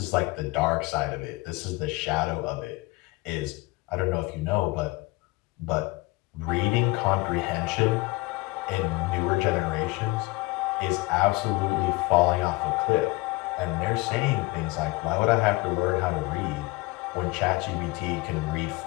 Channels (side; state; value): right; quieter; 23.2 dB